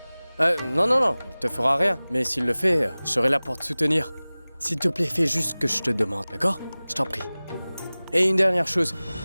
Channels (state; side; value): inverted; both; correlation -0.99